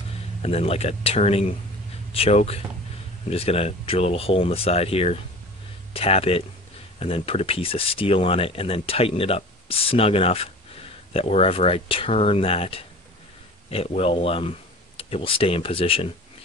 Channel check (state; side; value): normal; both; correlation 0.40